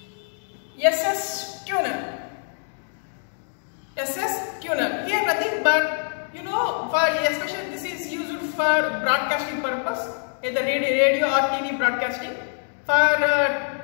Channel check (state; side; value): silent; right; 62 dB below the other